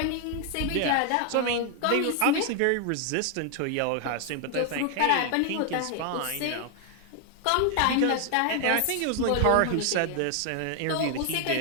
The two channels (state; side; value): different; both; correlation 0.00